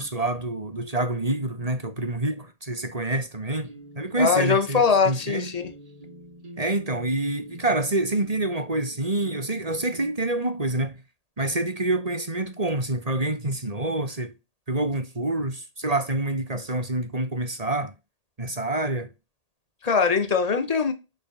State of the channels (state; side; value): late; left; 1.8 ms